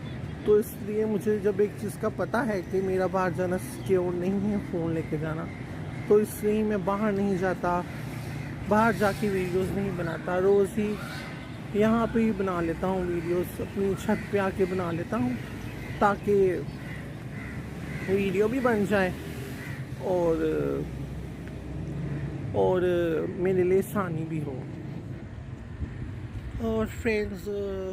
तो इसलिए मुझे जब एक चीज़ का पता है कि मेरा बाहर जाना सिक्योर नहीं है फ़ोन लेके जाना, तो इसलिए मैं बाहर नहीं जाता, बाहर जाके वीडियोस नहीं बनाता। रोज़ ही यहाँ पे ही बना लेता हूँ वीडियोस, अपनी छत पे आके बना लेता हूँ, ताकि वीडियो भी बन जाए और मेरे लिए आसानी भी हो। और फ्रेंड्स,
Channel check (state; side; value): identical; both; correlation 1.00